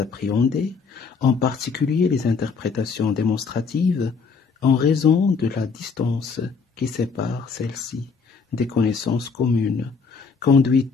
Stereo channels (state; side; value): quieter; right; 5.2 dB